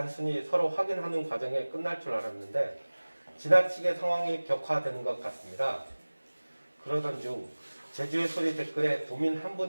서로 확인하는 과정에 끝날 줄 알았는데 지나치게 상황이 격화되는 것 같습니다. 그러던 중 제주의 소리 댓글에 도민 한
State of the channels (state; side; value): inverted; both; correlation -1.00